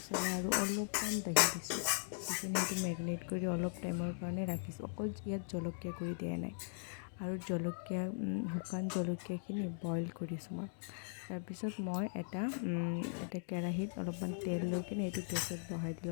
আৰু অলপমান দহি দিছোঁ, দি কিনে সেইটো মেৰিনেট কৰি অলপ টাইমৰ কাৰণে ৰাখিছোঁ। অকল ইয়াত জলকীয়া গুড়ি দিয়া নাই, আৰু শুকান জলকীয়াখিনি বইল কৰিছোঁ মই। তাৰপিছত মই এটা কেৰাহীত অলপমান তেল লৈ কিনে এইটো গেছত বহাই দিলোঁ,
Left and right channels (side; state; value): right; silent; digital silence